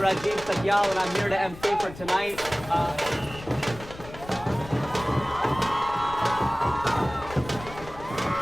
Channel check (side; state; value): left; noise; rumble, 16 dB below the sound